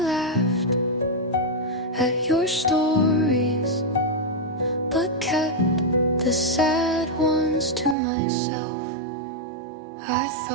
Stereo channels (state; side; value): drops out; left; at 8.0 s